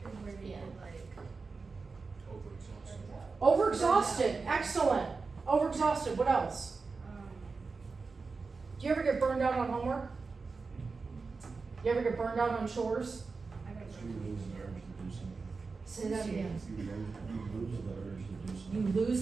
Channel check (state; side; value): quieter; left; 4.4 dB